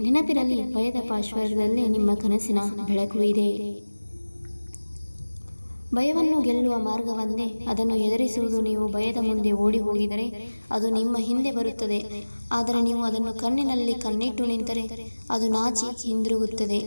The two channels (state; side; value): inverted; both; correlation -1.00